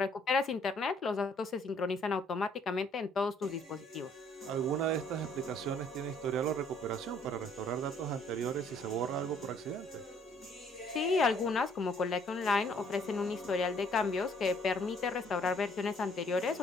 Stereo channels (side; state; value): both; normal; correlation 0.62